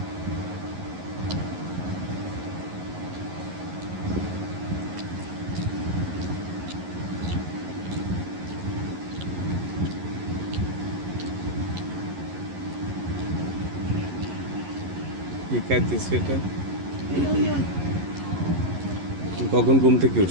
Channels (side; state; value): left; late; 11 ms